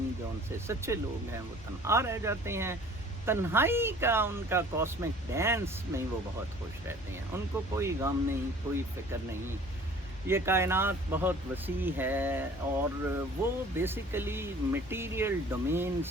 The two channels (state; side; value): normal; both; correlation 0.49